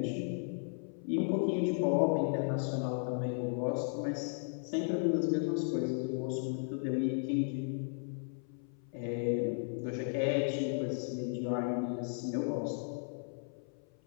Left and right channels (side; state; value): right; silent; 54 dB below the other